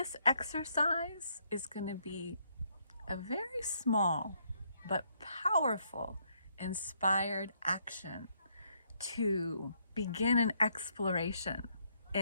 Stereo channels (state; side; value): inverted; both; correlation -0.72